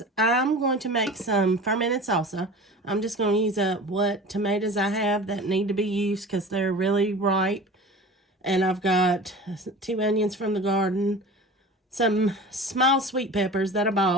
I'm going to make some fermented salsa. I'm just going to use up what tomatoes I have that need to be used because they're really ripe. And I've got 2 onions from the garden, some small sweet peppers that I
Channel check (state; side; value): normal; both; correlation 0.37